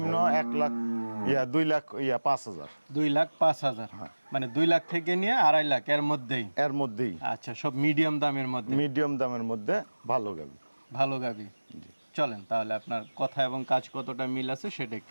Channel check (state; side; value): inverted; both; correlation -1.00